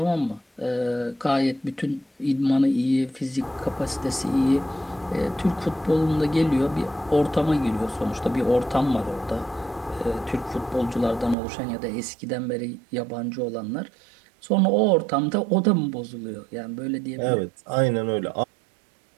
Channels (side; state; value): left; drops out; at 11.4 s